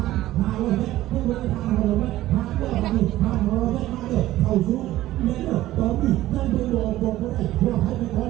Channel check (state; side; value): quieter; left; 15.3 dB